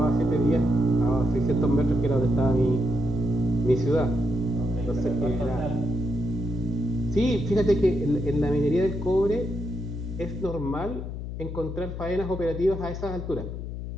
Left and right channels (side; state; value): left; noise; hum, 7 dB below the sound